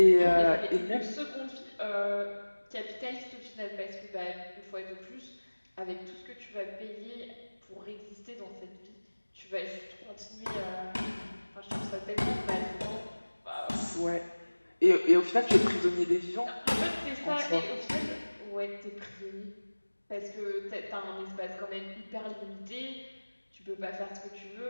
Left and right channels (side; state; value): both; inverted; correlation -1.00